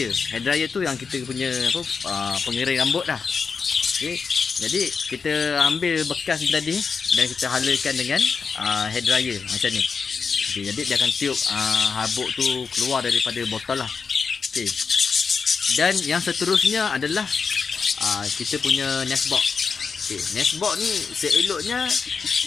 Hair dryer tu yang kita punya pengering rambut lah. Jadi kita ambil bekas tadi dan kita halakan dengan hair dryer macam ni. Jadi dia akan tiup habuk tu keluar daripada botol lah. Dan yang seterusnya adalah kita punya nestbox. Nestbox ni seeloknya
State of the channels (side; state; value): right; quieter; 5.4 dB